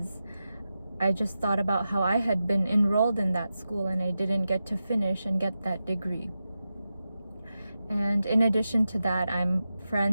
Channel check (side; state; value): both; inverted; correlation -0.91